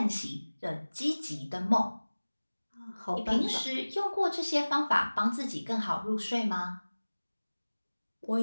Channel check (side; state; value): both; inverted; correlation -1.00